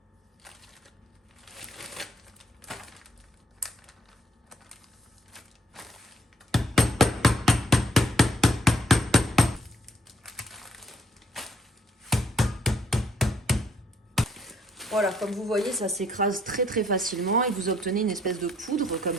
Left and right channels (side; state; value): both; normal; correlation 0.67